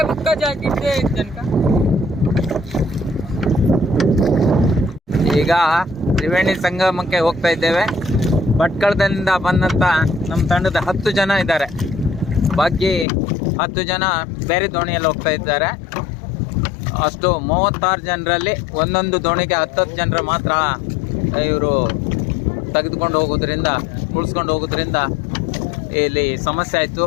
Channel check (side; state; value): right; drops out; at 13.1 s